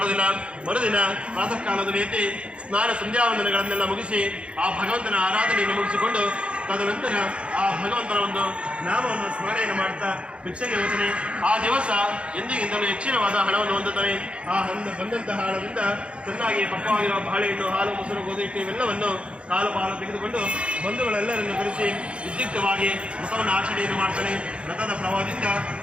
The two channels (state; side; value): late; left; 0.059 ms